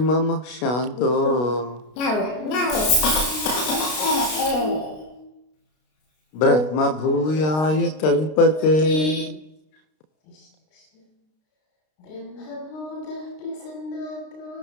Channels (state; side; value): late; right; 32 ms